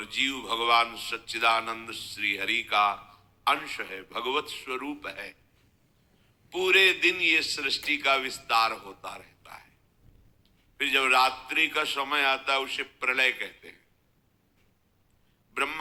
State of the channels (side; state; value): both; identical; correlation 1.00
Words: जीव भगवान सच्चिदानंद श्री हरि का अंश है, भगवत स्वरूप है। पूरे दिन ये सृष्टि का विस्तार होता रहता है। फिर जब रात्रि का समय आता है उसे प्रलय कहते हैं।